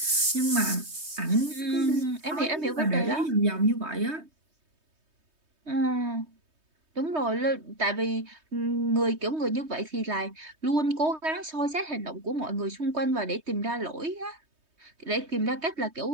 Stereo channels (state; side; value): late; left; 3.2 ms